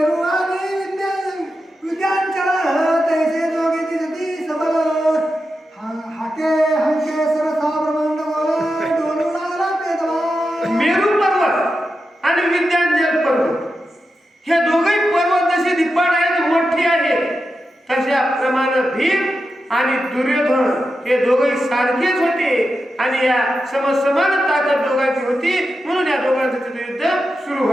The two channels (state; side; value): normal; both; correlation 0.89